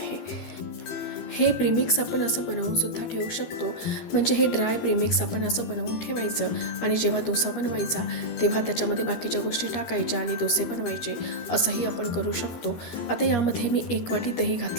हे प्रीमिक्स आपण असं बनवून सुद्धा ठेवू शकतो. म्हणजे हे ड्राय प्रीमिक्स आपण असं बनवून ठेवायचं आणि जेव्हा डोसा बनवायचा तेव्हा त्याच्यामध्ये बाकीच्या गोष्टी टाकायच्या आणि डोसे बनवायचे, असंही आपण करू शकतो. आता यामध्ये मी 1 वाटी दही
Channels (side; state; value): right; late; 13 ms